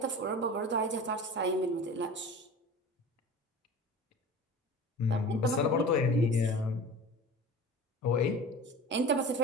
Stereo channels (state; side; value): normal; both; correlation 0.37